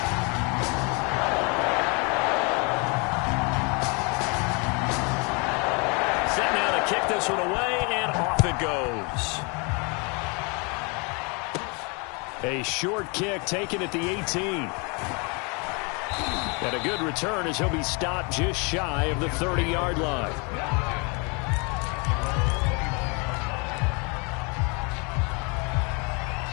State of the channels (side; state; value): right; quieter; 32.0 dB